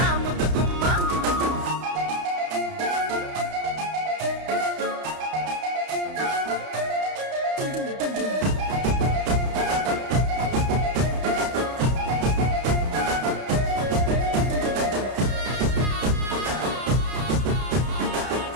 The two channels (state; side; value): late; left; 31 ms